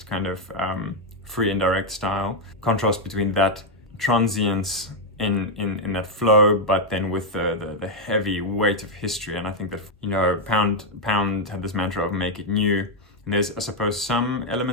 kind of free and direct style. Contrast between that transience in that flow, but then with the heavy weight of history. And I think that, Pound had this mantra of make it new. And there's, I suppose, some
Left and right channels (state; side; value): normal; both; correlation 0.02